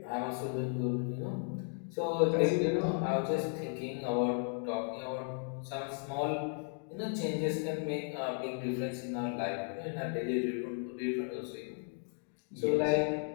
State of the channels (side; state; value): right; silent; 54 dB below the other